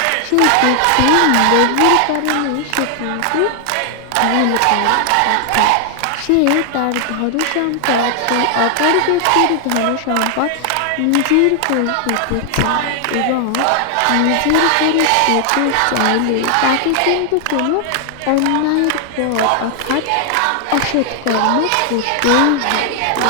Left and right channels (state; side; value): different; both; correlation 0.00